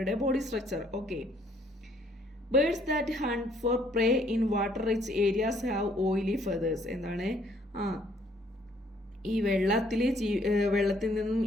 body structure. Okay, birds that hunt for prey in water rich areas have oily feathers. എന്താണ്? ഈ വെള്ളത്തിൽ നിന്നും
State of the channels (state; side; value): normal; both; correlation 0.64